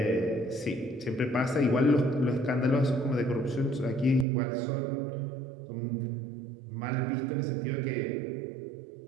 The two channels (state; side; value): drops out; left; at 4.2 s